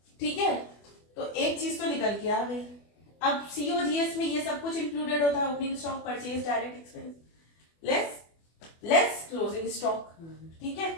ठीक है, तो एक चीज तो निकल के आ गई। अब COGS में ये सब कुछ इंक्लूडेड होता है, opening stock, purchase, direct expense, less closing stock. ठीक है,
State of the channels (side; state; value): right; late; 24 ms